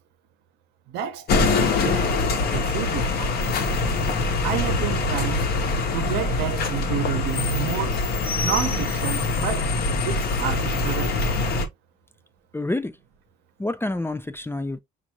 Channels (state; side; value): normal; both; correlation 0.18